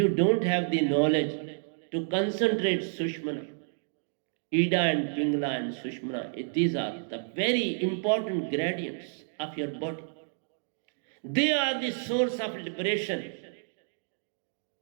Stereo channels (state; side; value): silent; left; digital silence